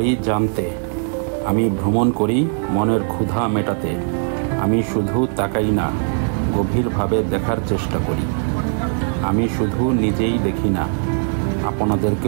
জানতে, আমি ভ্রমণ করি মনের ক্ষুধা মেটাতে। আমি শুধু তাকাই না, গভীরভাবে দেখার চেষ্টা করি। আমি শুধু নিজেই দেখি না,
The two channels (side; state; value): left; silent; 56 dB below the other